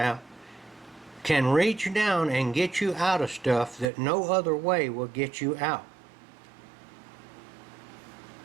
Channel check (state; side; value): drops out; left; at 3.9 s